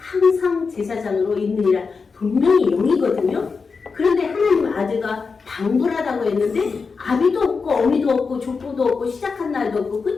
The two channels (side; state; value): right; quieter; 4.9 dB